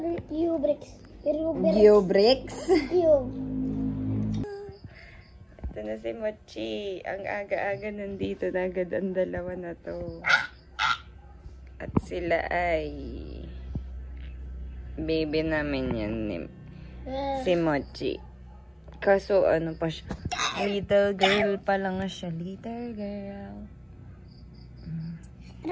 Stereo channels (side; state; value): both; identical; correlation 1.00